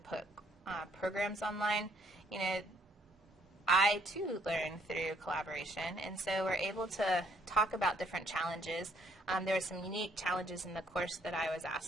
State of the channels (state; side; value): normal; both; correlation 0.68